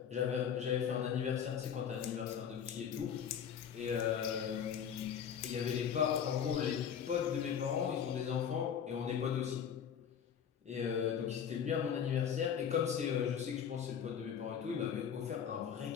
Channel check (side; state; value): right; quieter; 8.0 dB